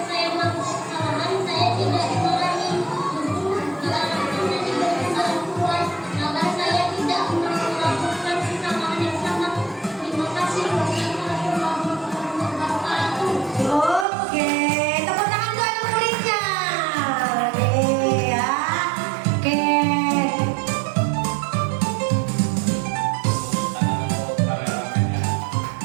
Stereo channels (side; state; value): left; drops out; at 14.1 s